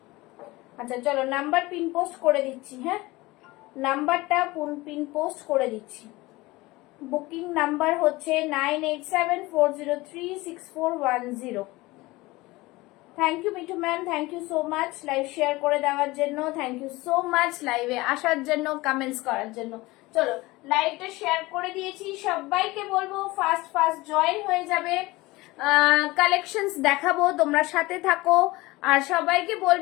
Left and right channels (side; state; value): right; quieter; 20.8 dB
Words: আচ্ছা চলো নাম্বার পিন পোস্ট করে দিচ্ছি, হ্যাঁ নাম্বারটা পিন পোস্ট করে দিচ্ছি। বুকিং নাম্বার হচ্ছে 9874036410। Thank you Mithu ma'am, thank you so much live share করে দেওয়ার জন্য। থ্যাংক ইউ সো মাচ লাইভে আসার জন্য, কমেন্টস করার জন্য। চলো লাইভটা শেয়ার করে দিয়েছি। সবাইকে বলবো ফাস্ট ফাস্ট জয়েন হয়ে যাবে। কালেকশনস দেখাবো, তোমরা সাথে থাকো। আর সবাইকে